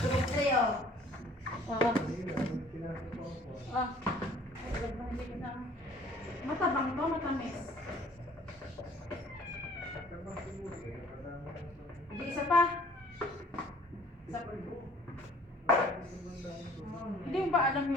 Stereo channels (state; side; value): normal; both; correlation 0.54